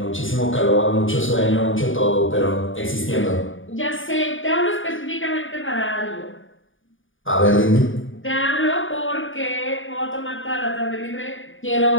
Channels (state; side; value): late; right; 0.57 ms